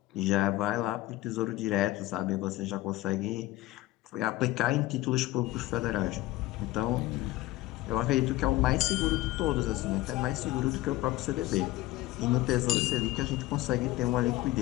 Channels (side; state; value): right; quieter; 17.4 dB